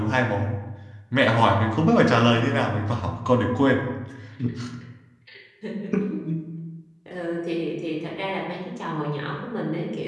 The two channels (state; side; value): identical; both; correlation 1.00